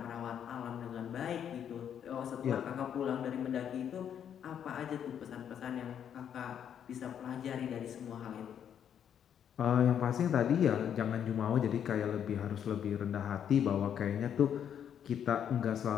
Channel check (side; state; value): right; quieter; 8.9 dB